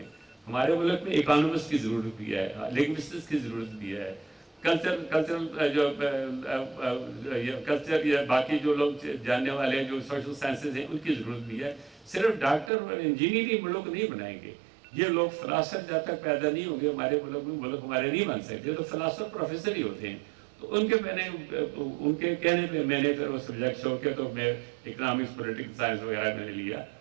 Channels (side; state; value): left; drops out; at 12.7 s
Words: ہمارے ملک میں اکانومسٹ کی ضرورت بھی ہے، لنگوسٹس کی ضرورت بھی ہے، کلچر یا باقی جو لوگ جاننے والے ہیں جو سوشل سائنسز ہیں ان کی ضرورت بھی ہے. صرف ڈاکٹر اور انجینئر ہی ملک نہیں بنائیں گے. یہ لوگ فلاسفر جب تک پیدا نہیں ہوں گے ہمارے ملک میں، ملک ہمارے نہیں بن سکتے. تو فلاسفر پروفیسر ہی ہوتے ہیں. تو ان کے کہنے پہ میں نے پھر وہ سبجیکٹ چھوڑ کے تو میں اکنامکس پولیٹیکل سائنس وغیرہ میں نے لیا.